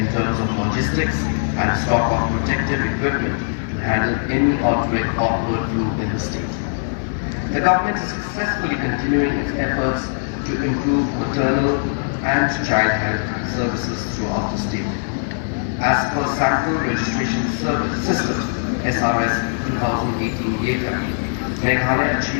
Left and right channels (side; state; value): right; silent; digital silence